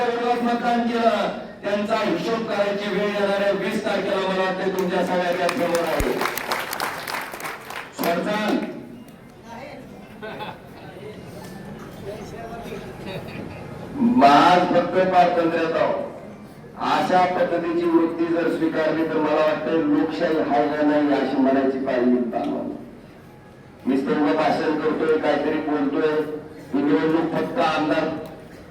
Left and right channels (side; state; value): both; identical; correlation 1.00